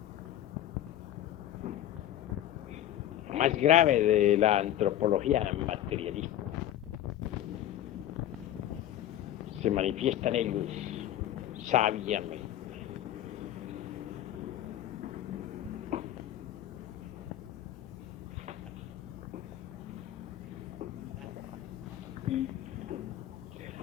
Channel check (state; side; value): quieter; right; 12.4 dB